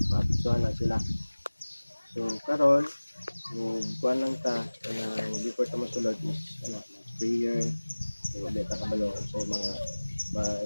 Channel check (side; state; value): both; inverted; correlation -1.00